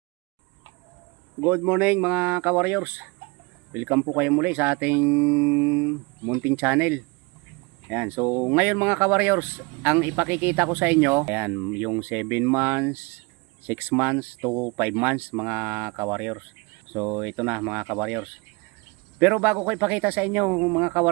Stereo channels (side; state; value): left; quieter; 27.6 dB